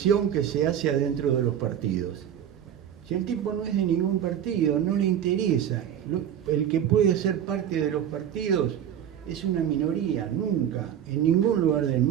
que se hace adentro de los partidos. Si el tipo no es de ningún partido, no le interesa, el que puede ser parte de los partidos es una minoría. Nunca, en ningún lugar del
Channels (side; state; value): left; quieter; 9.7 dB